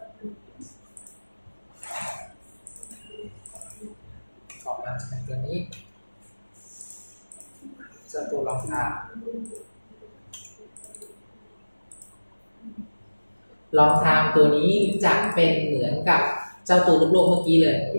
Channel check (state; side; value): inverted; both; correlation -1.00